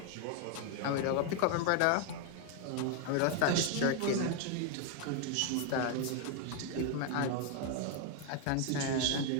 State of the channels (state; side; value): different; both; correlation 0.01